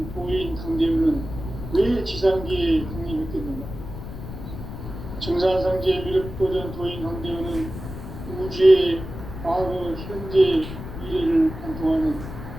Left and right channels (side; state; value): left; noise; rumble, 9 dB below the sound